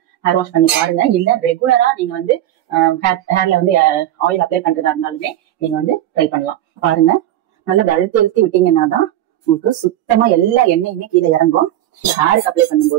ஹேர் வாஷ் பண்ணி பாருங்க. இல்ல ரெகுலரா நீங்க வந்து ஹேர்ல வந்து ஆயில் அப்ளை பண்றதா இருந்தாலுமே நீங்க வந்து ட்ரை பண்ணலாம். பாருங்க, நல்லா அழுத்தி விட்டீங்கன்னா தான் உங்களுக்கு சுத்தமா எல்லா எண்ணெயுமே கீழே இறங்கும். ஹேருக்கு அப்ளை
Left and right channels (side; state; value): left; quieter; 12.9 dB